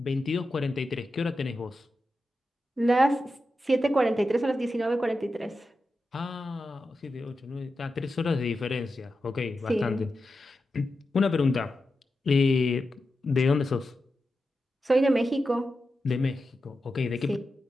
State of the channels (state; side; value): normal; both; correlation 0.90